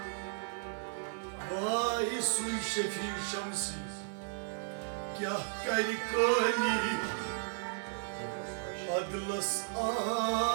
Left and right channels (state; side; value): silent; left; 55 dB below the other